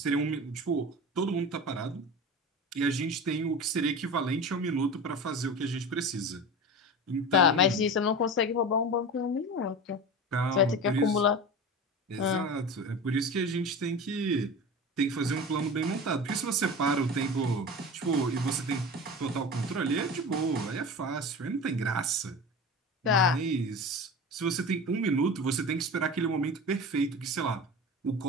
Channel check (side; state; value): both; normal; correlation 0.30